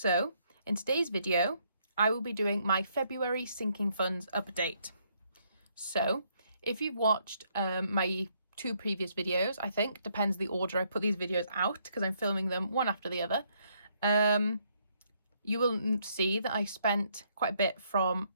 in today's video, I will be doing my February sinking funds update. So if you've watched my two previous videos, I think, depends the order I put these videos out because I'm filming them one after the other. You will see that I spent quite a bit from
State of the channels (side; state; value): both; inverted; correlation -0.71